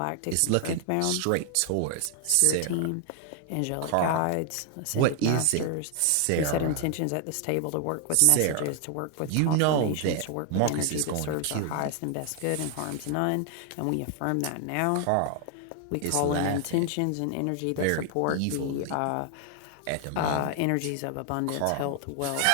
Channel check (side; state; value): both; different; correlation 0.00